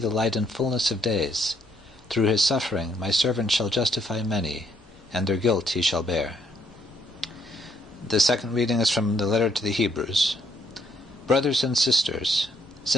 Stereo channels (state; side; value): normal; both; correlation 0.70